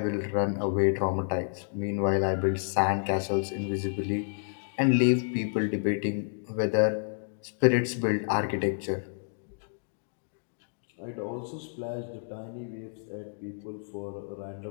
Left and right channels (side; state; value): right; silent; digital silence